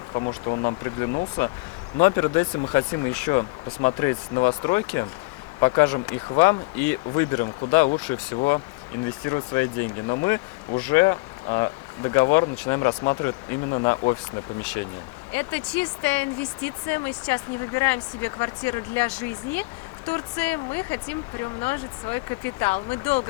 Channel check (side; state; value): right; quieter; 26.7 dB